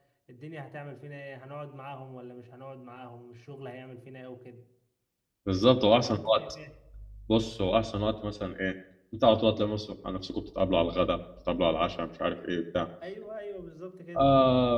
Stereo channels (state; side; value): identical; both; correlation 1.00